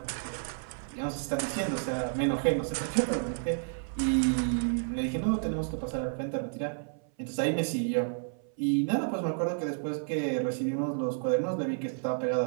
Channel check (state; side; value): silent; left; 57 dB below the other